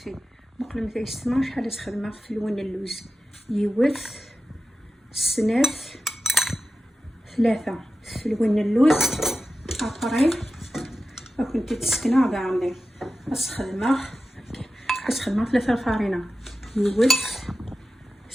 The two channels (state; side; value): normal; both; correlation 0.93